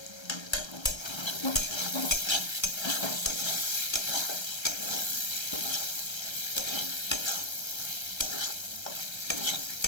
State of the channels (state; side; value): late; right; 1.3 ms